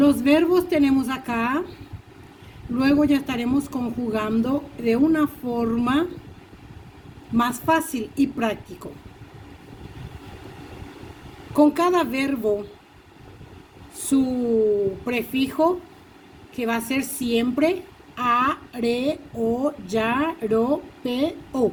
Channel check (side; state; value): both; identical; correlation 1.00